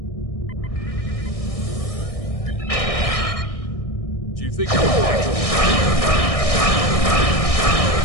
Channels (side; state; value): right; late; 1.6 ms